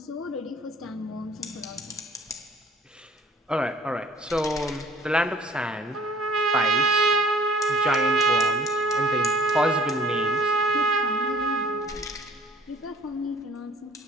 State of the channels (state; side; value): normal; both; correlation 0.53